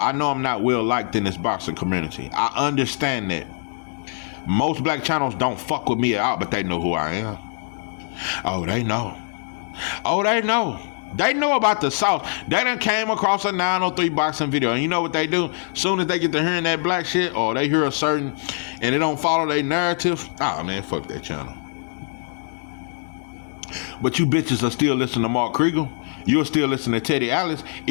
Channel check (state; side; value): silent; right; digital silence